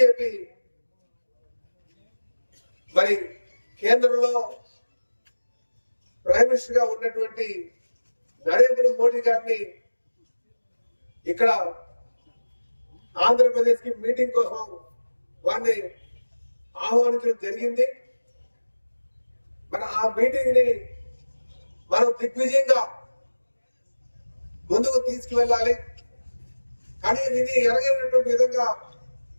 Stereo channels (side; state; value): both; inverted; correlation -1.00